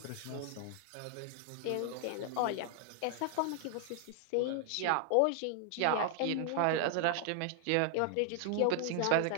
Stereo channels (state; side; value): different; both; correlation 0.00